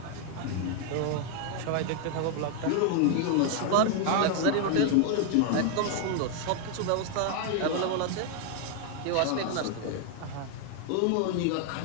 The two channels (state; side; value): different; both; correlation 0.00